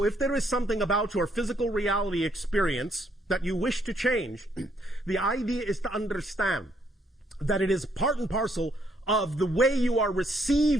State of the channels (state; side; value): normal; both; correlation 0.71